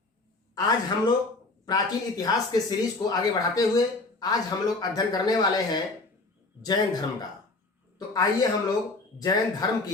आज हम लोग प्राचीन इतिहास के सीरीज को आगे बढ़ाते हुए आज हम लोग अध्ययन करने वाले हैं जैन धर्म का। तो आइए हम लोग जैन धर्म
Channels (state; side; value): quieter; right; 3.3 dB